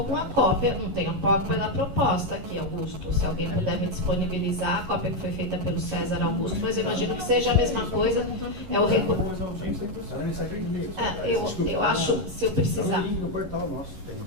com a cópia, não tenho a cópia da proposta aqui, Augusto. Se alguém puder me disponibilizar, a cópia que foi feita pelo César Augusto, mas eu imagino que seja a mesma coisa. É o eu acho, se eu precisar...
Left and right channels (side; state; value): left; late; 11 ms